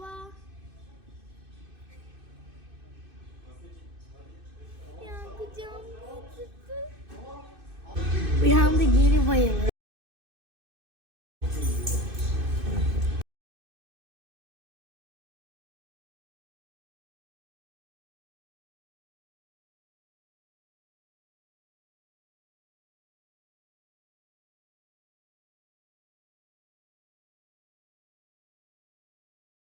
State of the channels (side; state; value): left; late; 2.6 ms